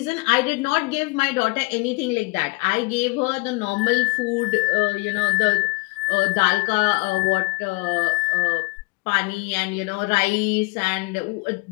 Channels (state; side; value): quieter; right; 26.1 dB